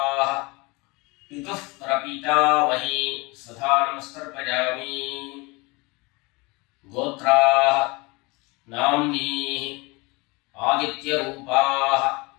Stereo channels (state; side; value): quieter; right; 25.8 dB